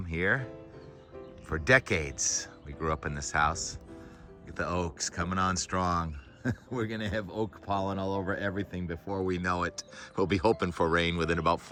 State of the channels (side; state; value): both; identical; correlation 1.00